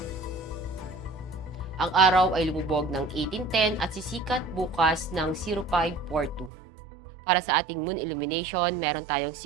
Ang araw ay lumubog ng 18:10 at sisikat bukas ng 05:42. Para sa ating moon illumination, meron tayong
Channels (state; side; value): drops out; left; at 6.5 s